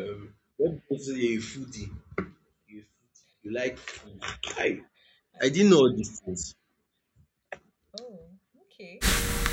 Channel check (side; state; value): both; identical; correlation 1.00